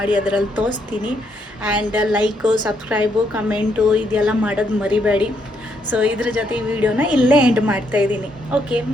ಅದರಲ್ಲಿ ತೋರಿಸ್ತೀನಿ. ಆ್ಯಂಡ್ ಲೈಕು, ಸಬ್ಸ್ಕ್ರೈಬು, ಕಮೆಂಟು ಇದೆಲ್ಲ ಮಾಡೋದು ಮರಿಬೇಡಿ. ಸೊ ಇದ್ರ ಜೊತೆ ಈ ವಿಡಿಯೋನ ಇಲ್ಲೇ ಎಂಡ್ ಮಾಡ್ತಾಯಿದ್ದೀನಿ. ಓಕೆ,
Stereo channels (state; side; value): normal; both; correlation 0.75